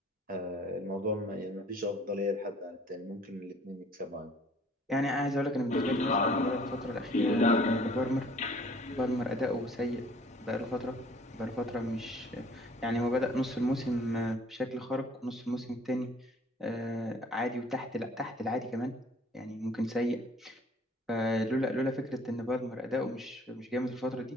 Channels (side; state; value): both; normal; correlation 0.55